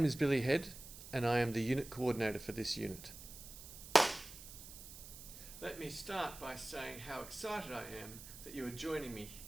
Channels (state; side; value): noise; right; hiss, 14 dB below the sound